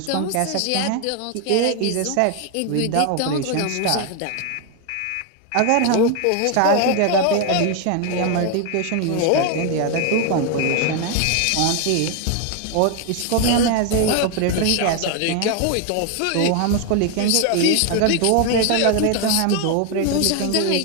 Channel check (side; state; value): both; different; correlation 0.01